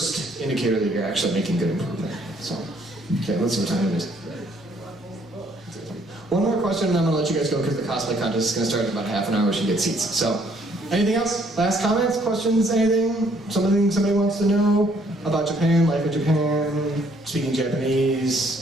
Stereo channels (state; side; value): normal; both; correlation 0.65